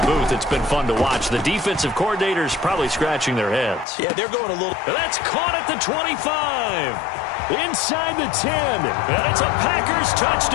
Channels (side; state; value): right; drops out; at 3.9 s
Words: booth, it's been fun to watch. The defensive coordinators probably scratching their heads. Yeah, they're going a little... That's caught at the 25. Inside the 10. And it's a Packers